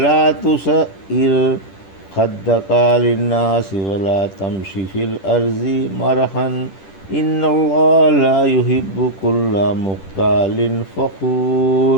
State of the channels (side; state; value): right; late; 10 ms